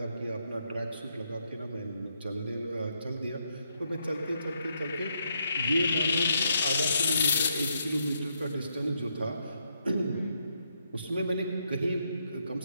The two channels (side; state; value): both; inverted; correlation -0.77